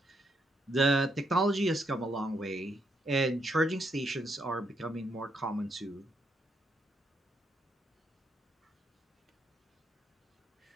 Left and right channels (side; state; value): both; normal; correlation 0.76